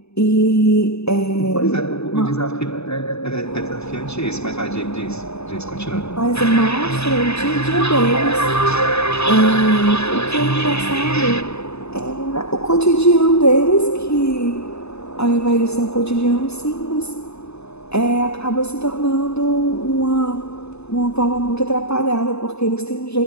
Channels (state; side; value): late; right; 0.80 ms